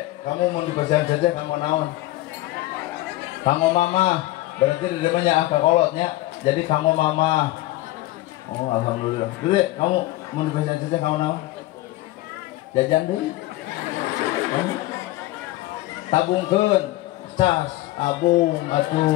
kamu mun dipasihan ceceh kamu naon? Kanggo mama, berarti di depannya akak kolotnya, jadi kanggo mama. Oh, alhamdulillah. Dede, kamu mau dipasihan ceceh kamu naon? Jajan deui. Tabungkeun, cas, abung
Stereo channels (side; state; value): right; quieter; 17.8 dB